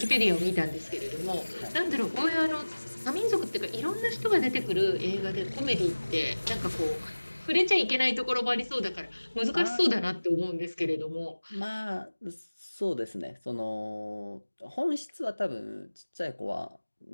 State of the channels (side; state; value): both; inverted; correlation -1.00